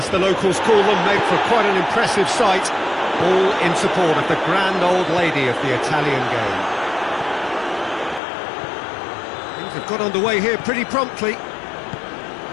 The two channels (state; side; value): drops out; right; at 8.2 s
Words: the locals call them, make for quite an impressive sight. All in support of the grand old lady of the Italian game. Things have got underway here pretty promptly.